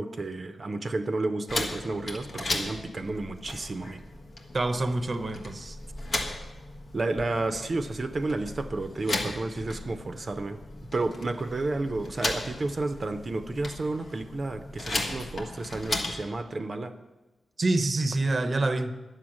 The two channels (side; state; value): both; normal; correlation 0.94